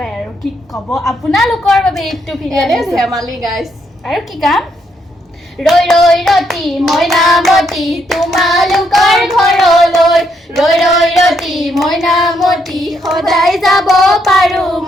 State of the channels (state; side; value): normal; both; correlation 0.75